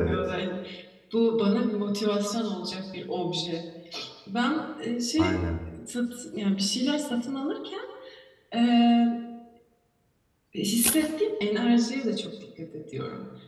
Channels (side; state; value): both; identical; correlation 1.00